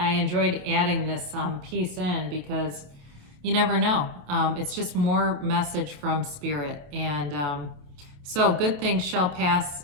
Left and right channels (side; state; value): left; late; 28 ms